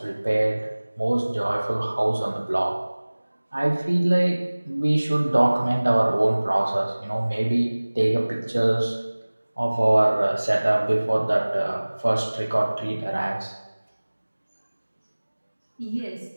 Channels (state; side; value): inverted; both; correlation -1.00